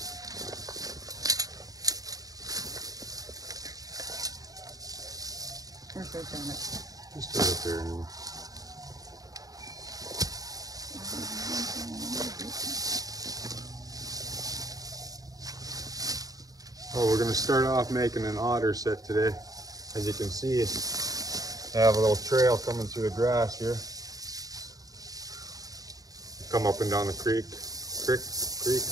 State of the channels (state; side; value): late; left; 0.18 ms